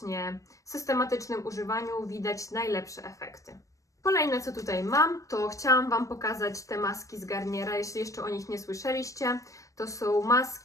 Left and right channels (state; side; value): late; right; 0.16 ms